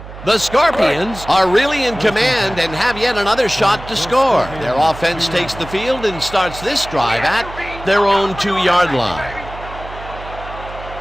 The Scorpions are really in command and have yet another shot to score. Their offense takes the field and starts this drive at their own 2-yard line.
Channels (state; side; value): noise; right; hum, 14 dB below the sound